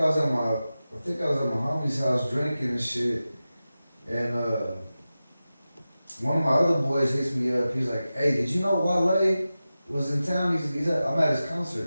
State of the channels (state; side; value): inverted; both; correlation -0.94